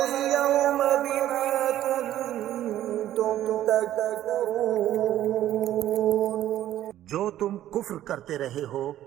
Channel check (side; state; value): left; quieter; 12.7 dB